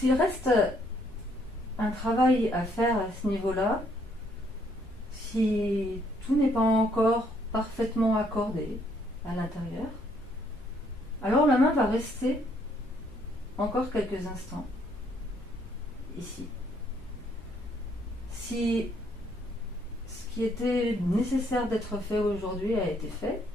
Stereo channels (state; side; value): normal; both; correlation 0.68